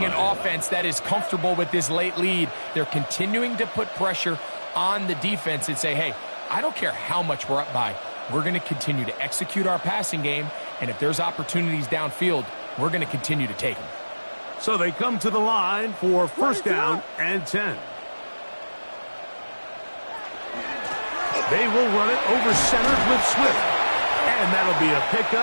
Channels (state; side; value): inverted; both; correlation -1.00